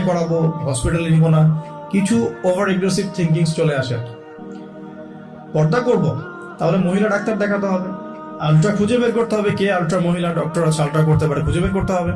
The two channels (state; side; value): identical; both; correlation 1.00